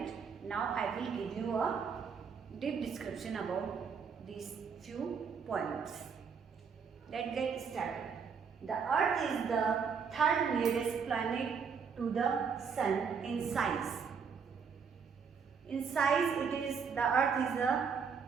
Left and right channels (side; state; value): left; quieter; 6.2 dB